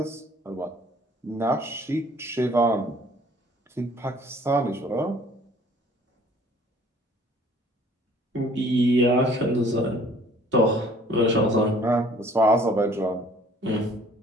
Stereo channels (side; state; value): both; normal; correlation 0.55